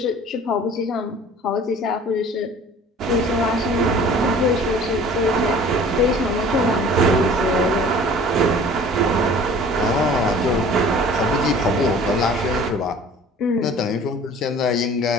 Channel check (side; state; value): both; normal; correlation 0.47